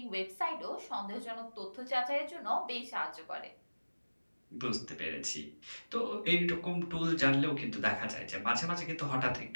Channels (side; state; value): both; inverted; correlation -1.00